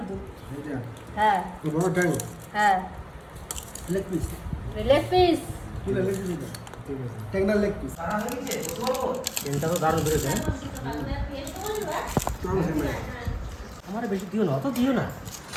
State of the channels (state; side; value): identical; both; correlation 1.00